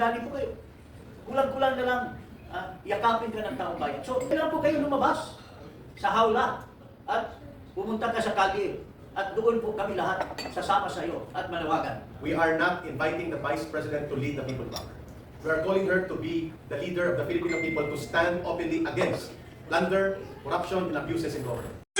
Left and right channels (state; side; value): identical; both; correlation 1.00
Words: po kayo. Kulang-kulang na lang yakapin ka ng taong bayan. So, kailan po kayo lumabas sa hawla at pumunta ka sa kalye at doon po kami lahat sasama sa iyo at manawagan. We are not inviting the Vice President to lead the people back. We are calling her to be the leader of the Filipino people to stand openly against plunder, corruption, and abuses in government.